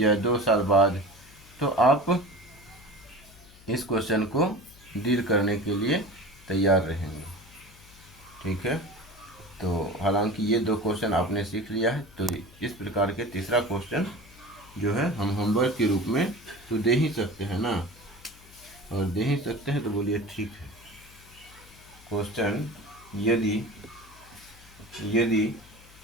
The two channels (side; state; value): left; noise; hum, 23 dB below the sound